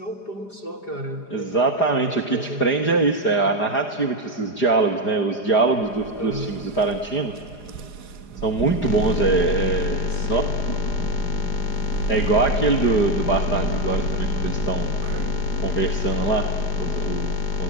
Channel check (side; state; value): right; late; 4.9 ms